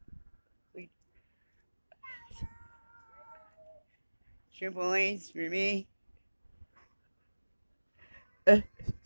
Triple lanes for me.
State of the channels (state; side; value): inverted; both; correlation -1.00